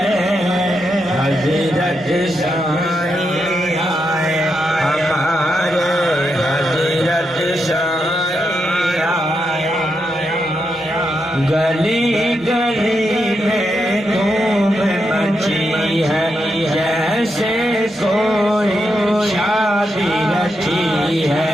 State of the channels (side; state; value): both; normal; correlation 0.83